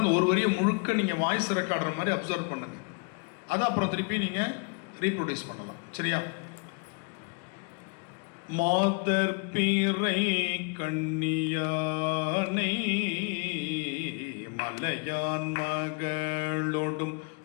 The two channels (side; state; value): right; quieter; 34.5 dB